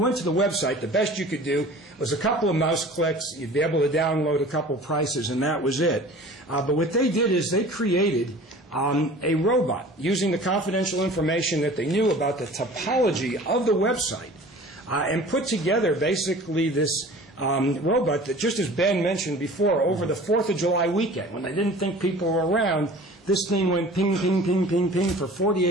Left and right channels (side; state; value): both; normal; correlation 0.43